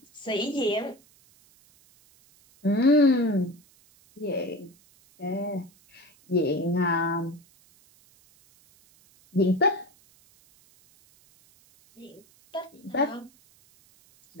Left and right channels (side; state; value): right; noise; hiss, 30 dB below the sound